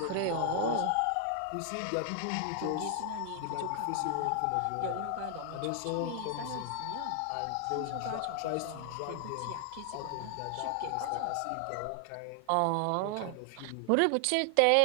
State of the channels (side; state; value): both; different; correlation 0.00